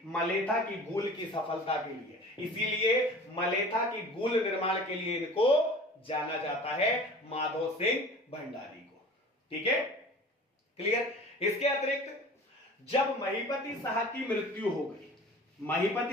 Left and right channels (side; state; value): both; normal; correlation 0.42